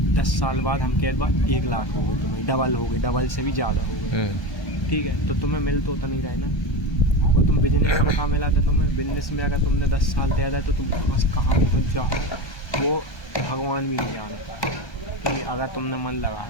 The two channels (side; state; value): right; late; 1.3 ms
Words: 10 साल बाद हम कह बाद 1 लाख हो गए, तुम्हें डबल हो गई, डबल से भी ज़्यादा हो गए, ठीक है। तो तुम्हें मिल तो नहीं रहे ना, और तुम बिजनेस में कहाँ मिला था तुम्हें, बिजनेस में अगर तुमने 10 साल दे दिया तो तुम बस कहाँ पहुँच जाओ वो भगवान भी नहीं जानता, ठीक है। अगर तुमने मन लगाया